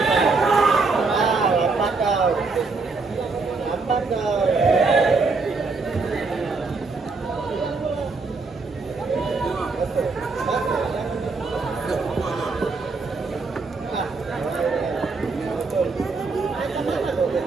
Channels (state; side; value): quieter; left; 4.1 dB